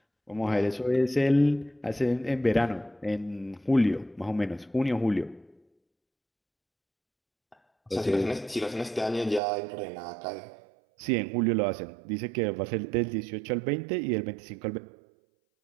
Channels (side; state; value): left; drops out; at 9.4 s